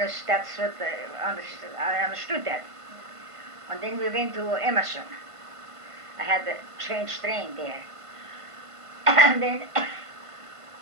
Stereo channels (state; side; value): late; left; 1.5 ms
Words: that's what I understood that. And then we went to Emerson. I had to change train there. And then,